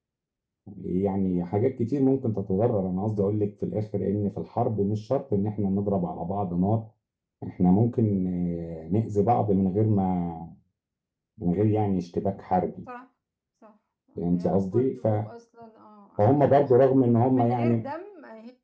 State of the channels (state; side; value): identical; both; correlation 1.00